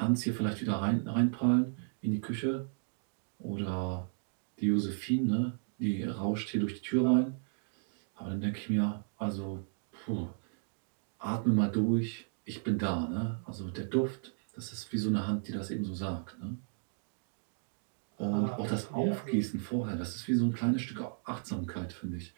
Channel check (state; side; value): silent; left; digital silence